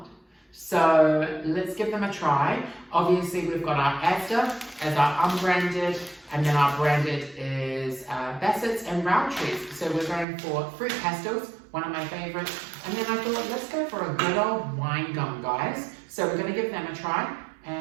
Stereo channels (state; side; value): drops out; left; at 10.2 s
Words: So let's give them a try. Obviously, we've got our Asda as our unbranded, and then our branded is Bassett's and Roundtrees. So we're going for fruit pastels, one of my favorites. And then I thought, let's go for a good old wine gum, guys. So we're going to give them a try.